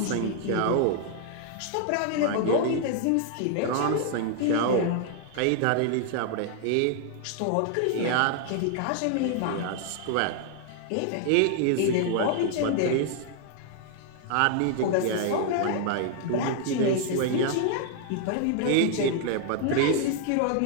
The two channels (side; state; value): both; different; correlation 0.00